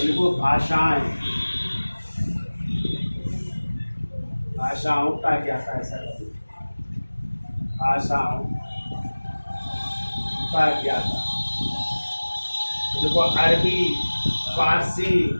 इनको भाषाओं का क्या था, ऐसा कभी भाषाओं का क्या था। देखो अरबी, फारसी,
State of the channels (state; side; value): inverted; both; correlation -1.00